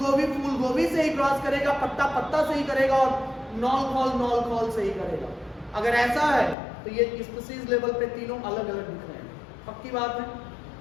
से ही क्रॉस करेगा, पत्ता पत्ता से ही करेगा, और नॉल खोल से ही करेगा। अगर ऐसा है तो ये स्पीसीज लेवल पे तीनों अलग अलग दिख रहे हैं। पक्की बात है?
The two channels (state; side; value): drops out; right; at 6.6 s